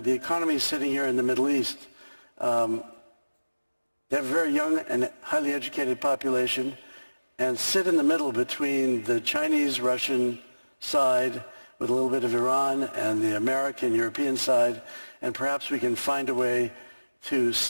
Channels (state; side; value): inverted; both; correlation -1.00